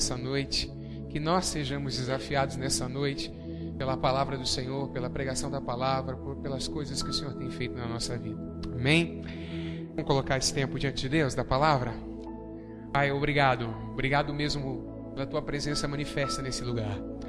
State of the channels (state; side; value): identical; both; correlation 1.00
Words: noite, que nós sejamos desafiados nessa noite pela palavra do Senhor, pela pregação da palavra, pelas coisas que o Senhor tem feito na nossa vida. Amém? Vamos colocar esse tempo diante de Deus, da palavra? Pai, obrigado. Obrigado mesmo pela Tua presença manifesta nesse lugar.